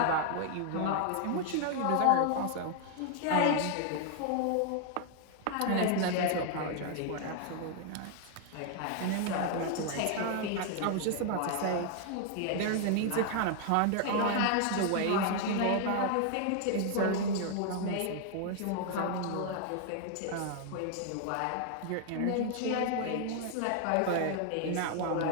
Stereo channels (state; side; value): different; both; correlation 0.00